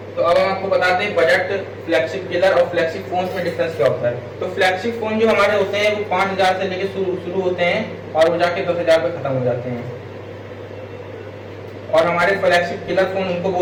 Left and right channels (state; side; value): identical; both; correlation 1.00